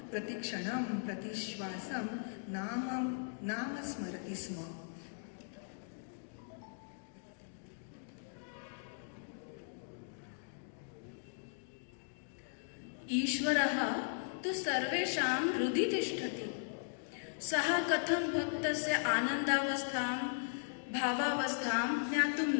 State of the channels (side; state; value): right; silent; digital silence